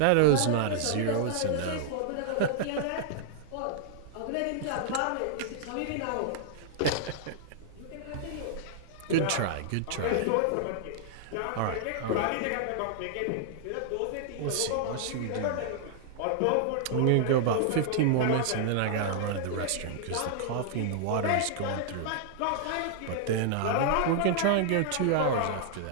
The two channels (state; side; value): different; both; correlation -0.01